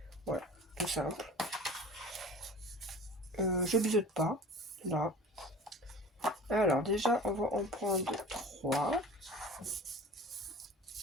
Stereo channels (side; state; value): both; normal; correlation 0.41